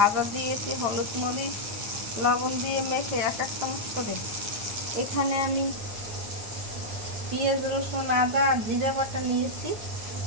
দিয়েছি, হলুদ মরিচ লবণ দিয়ে মেখে এক এক চামচ করে। এখানে আমি পেঁয়াজ রসুন আদা আর জিরা বাটা নিয়েছি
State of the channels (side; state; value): left; late; 9.2 ms